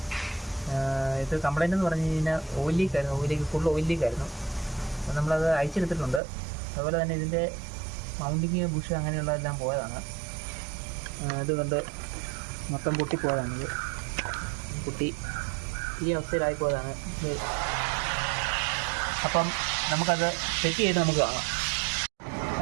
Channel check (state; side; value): drops out; left; at 6.2 s